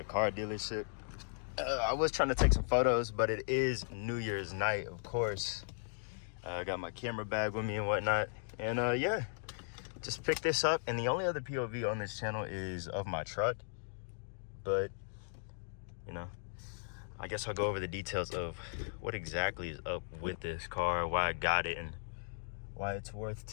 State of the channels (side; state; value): right; silent; digital silence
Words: car dealership. I was trying to take some photos, but it is New Year's night, of course. I got my camera bag with me and whatnot, and yeah. Just picked this up, and the only other POV on this channel is of my truck. But, you know, I guess I'll go over the details of what exactly is up with this car, why I got it, and why it's worth